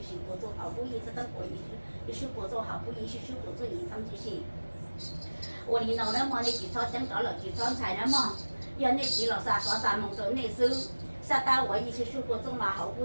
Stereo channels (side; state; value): both; inverted; correlation -1.00